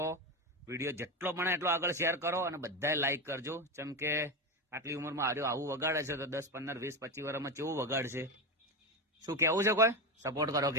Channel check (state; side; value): normal; both; correlation 0.15